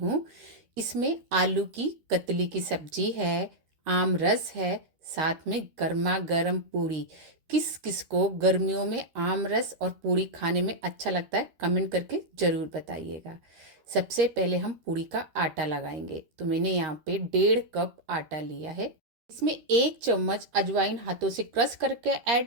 हूँ। इसमें आलू की कतली की सब्जी है, आम रस है, साथ में गर्मा गर्म पूड़ी। किस किस को गर्मियों में आम रस और पूड़ी खाने में अच्छा लगता है, कमेंट करके ज़रूर बताइएगा। सबसे पहले हम पूड़ी का आटा लगाएंगे। तो मैंने यहाँ पे 1.5 कप आटा लिया है। इसमें 1 चम्मच अजवाइन हाथों से क्रश करके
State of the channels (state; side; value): late; left; 13 ms